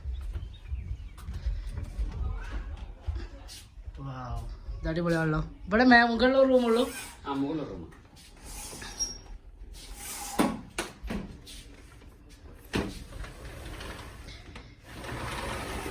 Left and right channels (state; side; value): identical; both; correlation 1.00